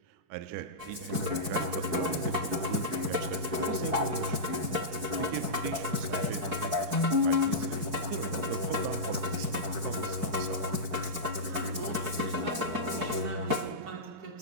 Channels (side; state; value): left; late; 4.6 ms